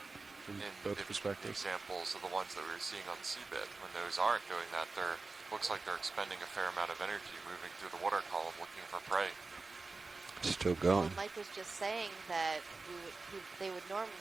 there, in both the perspectives. examples of the ones that we were seeing on the seabed. When those aren't doing that, they're looks like they're expending a fair amount of energy moving through the water column looking for prey. Still Well, going. Mike was just saying that they would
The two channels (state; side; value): quieter; left; 3.8 dB